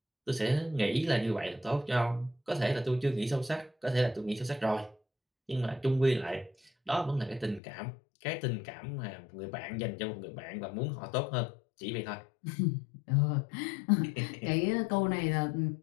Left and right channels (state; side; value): drops out; right; at 7.6 s